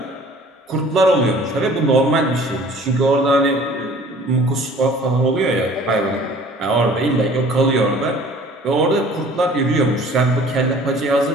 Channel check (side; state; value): both; normal; correlation 0.50